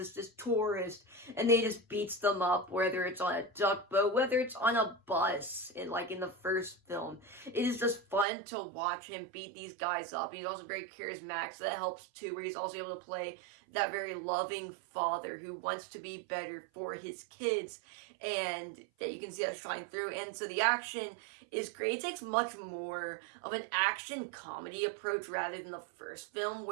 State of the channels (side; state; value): left; drops out; at 8.2 s